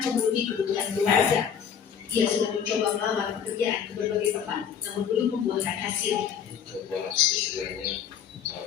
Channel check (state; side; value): quieter; right; 8.0 dB